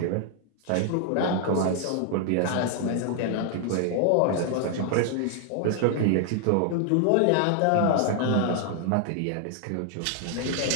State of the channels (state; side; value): different; both; correlation 0.00